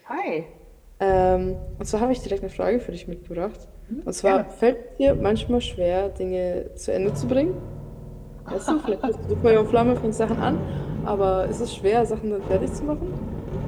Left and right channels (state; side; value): identical; both; correlation 1.00